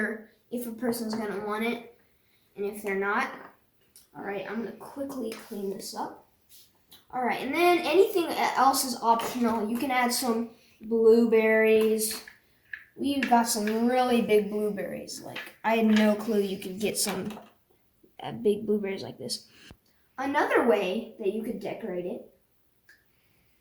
if a person's going to want it, and if they're not. Alright, I'm going to quickly clean this up. Alright, and then anything else is optional. You can add some blueberries. We've got some really big blueberries. Like, I had no clue you could get some big blueberries like this. Another way that you could decorate it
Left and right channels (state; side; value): identical; both; correlation 1.00